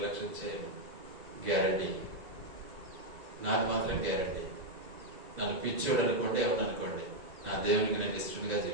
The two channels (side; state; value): left; late; 2.4 ms